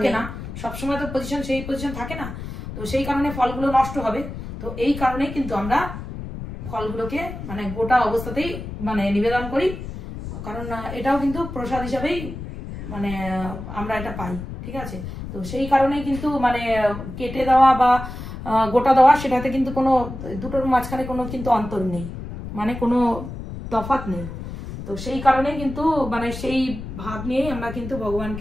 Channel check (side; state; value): left; noise; rumble, 9 dB below the sound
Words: না, সবসময় তো সেই পজিশন থাকে না, তো সেই কারণে ফলগুলো নষ্ট হবে। তো এই কারণেই কিন্তু আমরা ফলগুলোকে মানে গোটা অবস্থাতেই মানে নিবেদন করি, কারণ এটাও কিন্তু প্রসাদ হিসাবেই মানে আমরা এটা পাই, ঠিক আছে। তো সেই কারণেই কিন্তু মানে কেটে দেওয়া বা গোটা দেওয়া সেটাতে কিন্তু কোনো দুটোর মাঝখানে কোনো কিন্তু অন্তর নেই, মানে কোনো তফাৎ নেই। তো সেই কারণেই কিন্তু মানে সেই ভাব নিয়েই আমরা কিন্তু